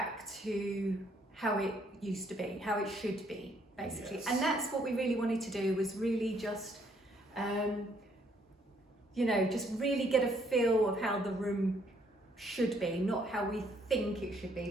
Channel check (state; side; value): normal; both; correlation 0.68